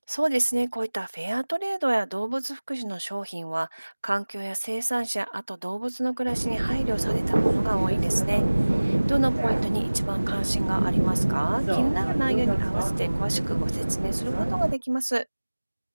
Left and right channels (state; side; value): inverted; both; correlation -1.00